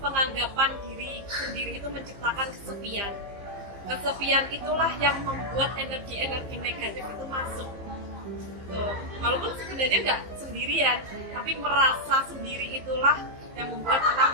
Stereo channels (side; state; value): left; late; 15 ms